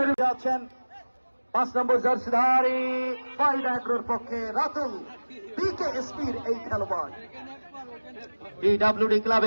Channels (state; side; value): inverted; both; correlation -1.00